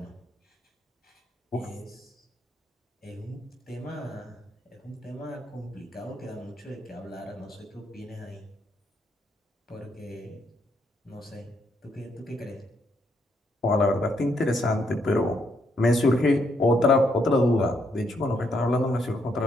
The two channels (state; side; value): normal; both; correlation 0.75